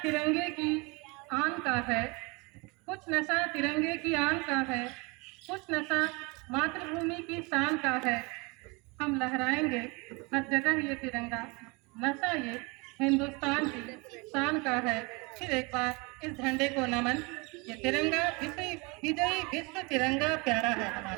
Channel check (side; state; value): left; quieter; 28.0 dB